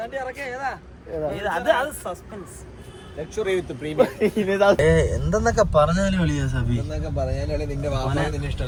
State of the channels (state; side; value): identical; both; correlation 1.00